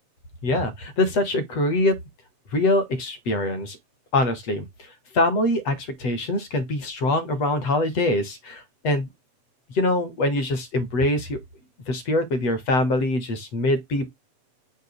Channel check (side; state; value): right; late; 8.0 ms